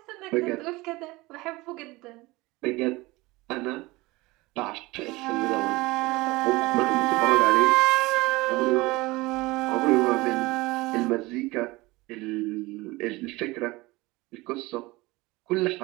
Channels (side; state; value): left; quieter; 21.4 dB